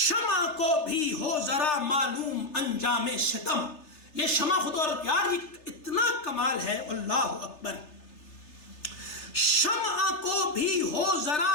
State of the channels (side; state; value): right; late; 3.3 ms